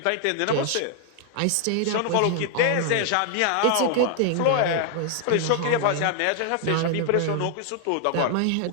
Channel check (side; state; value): both; different; correlation 0.00